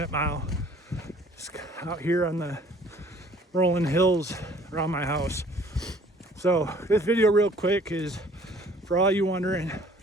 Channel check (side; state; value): both; normal; correlation 0.55